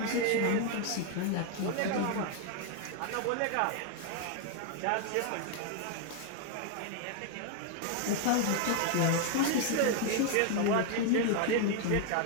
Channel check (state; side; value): different; both; correlation 0.00